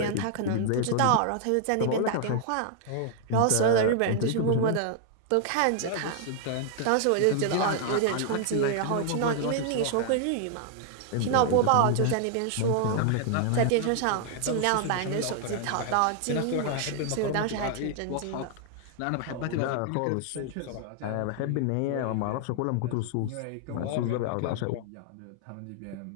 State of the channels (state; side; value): different; both; correlation 0.00